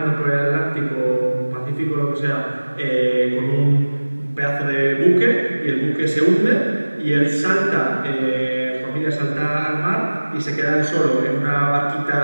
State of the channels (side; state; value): both; inverted; correlation -1.00